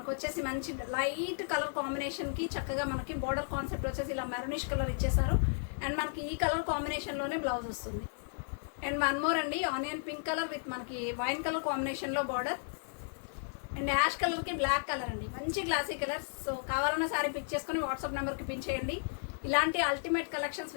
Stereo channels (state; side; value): silent; right; 55 dB below the other